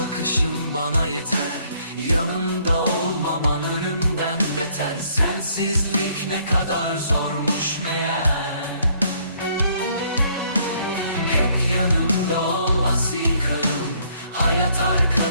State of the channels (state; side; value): inverted; both; correlation -0.65